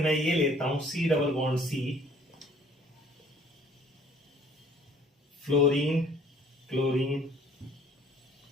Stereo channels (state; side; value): normal; both; correlation 0.56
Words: ये लेता हूं C double bond C, fluorine, chlorine,